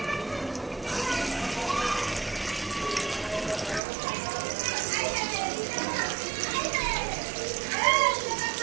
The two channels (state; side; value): drops out; left; at 3.8 s